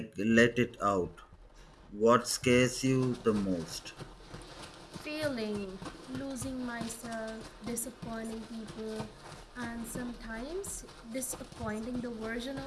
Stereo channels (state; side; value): identical; both; correlation 1.00